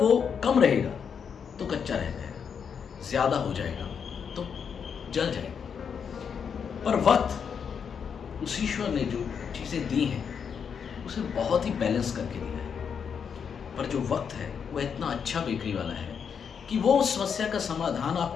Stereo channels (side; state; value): right; quieter; 6.9 dB